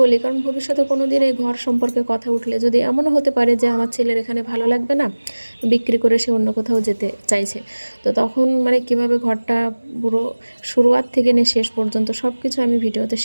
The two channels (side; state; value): both; inverted; correlation -1.00